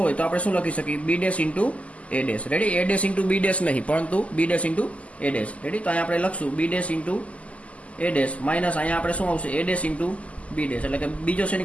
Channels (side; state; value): right; late; 0.067 ms